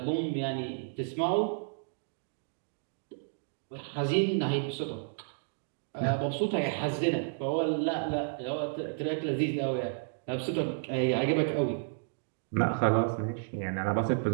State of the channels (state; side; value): silent; left; digital silence